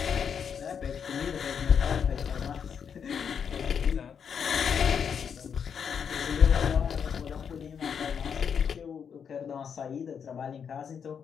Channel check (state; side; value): quieter; right; 7.2 dB